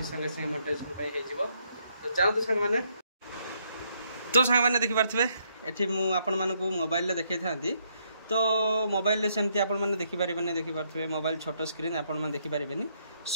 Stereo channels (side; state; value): both; inverted; correlation -0.73